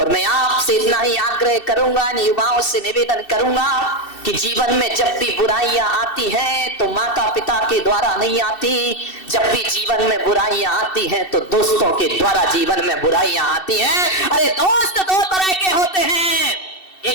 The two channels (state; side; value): late; right; 2.7 ms